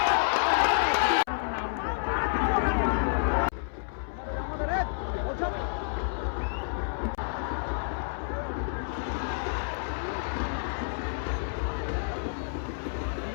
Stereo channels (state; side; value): silent; right; 58 dB below the other